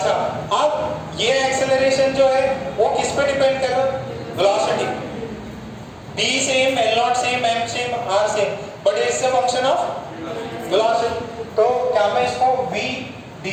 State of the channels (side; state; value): both; identical; correlation 1.00